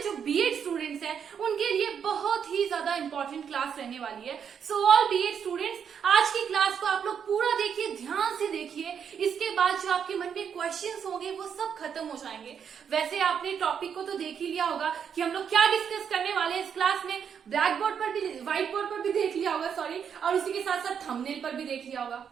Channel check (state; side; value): quieter; left; 7.6 dB